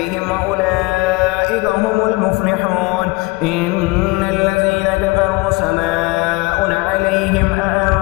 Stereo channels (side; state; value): right; quieter; 24.0 dB